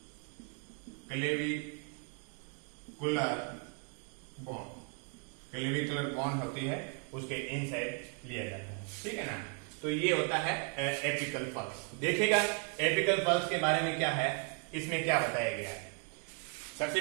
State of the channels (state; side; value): quieter; left; 39.1 dB